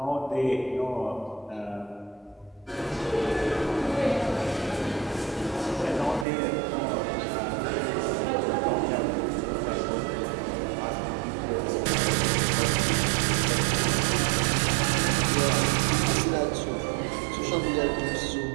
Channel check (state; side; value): drops out; left; at 6.2 s